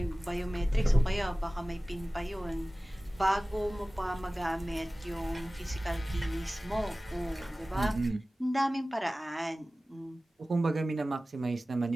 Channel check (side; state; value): both; normal; correlation 0.97